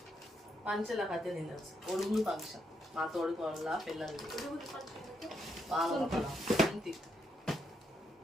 పంచల కథ తినచ్చు. ఒడుగురు ఫంక్షన్ మా తోడికోళ్ళ పిల్లలది.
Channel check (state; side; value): normal; both; correlation 0.78